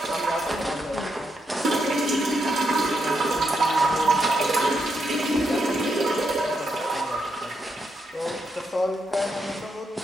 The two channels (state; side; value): normal; both; correlation 0.81